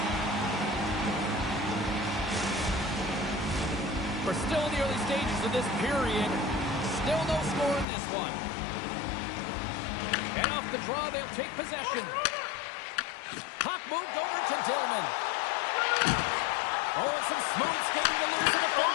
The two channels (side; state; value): right; drops out; at 7.9 s